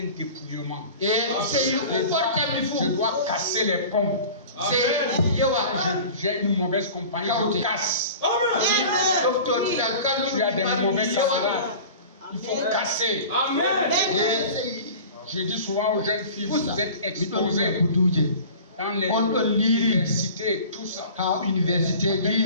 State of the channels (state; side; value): inverted; both; correlation -0.40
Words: dépouillement. Je dois casser les ponts. J'ai une mauvaise compagnie, je casse. Tu as des mauvais camarades. Il faut casser. Je dis souvent aux jeunes filles, vous êtes exposés dans les universités, tout ça.